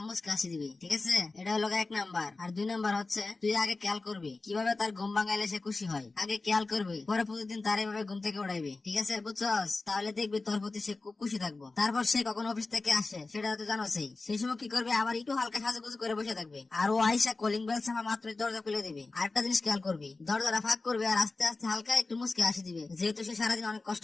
হাসি দিবি, ঠিক আছে? এটা হলো এক নাম্বার। আর দুই নাম্বার হচ্ছে তুই আগে খেয়াল করবি কিভাবে তার ঘুম ভাঙাইলে সে খুশি হয়। আগে খেয়াল করবি, পরে প্রতিদিন তার এইভাবে ঘুম থেকে উড়াইবি, ঠিক আছে? বুঝছস? তাহলে দেখবি তোর প্রতি সে খুব খুশি থাকবো। তারপর সে কখন অফিস থেকে আসে সেটা তো জানোসই, সেই সময় কি করবে, আবার একটু হালকা সাজুগুজু করে বসে থাকবে। আর ও আইসা কলিং বেল ছাপা মাত্রই দরজা খুলে দিবে। আরেকটা জিনিস খেয়াল করবি, দরজাটা ফাঁক করবে আর আস্তে আস্তে হালকা একটু মুচকে হাসি দিবে, যেহেতু সে সারাদিন অনেক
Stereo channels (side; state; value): right; quieter; 3.6 dB